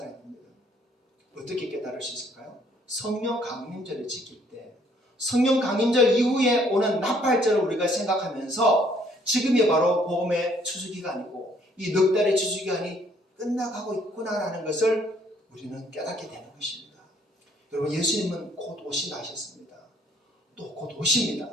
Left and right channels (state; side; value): normal; both; correlation 0.64